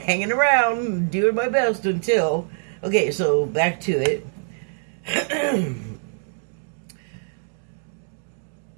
around, doing my best until... Okay, so back to it.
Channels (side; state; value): left; silent; digital silence